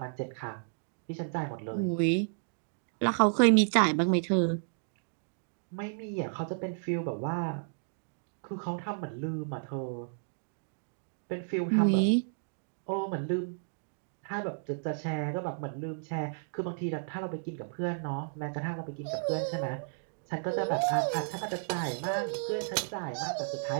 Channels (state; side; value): silent; left; digital silence